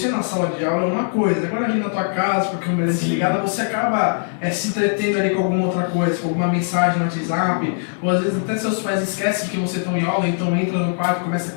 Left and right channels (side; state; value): right; silent; 62 dB below the other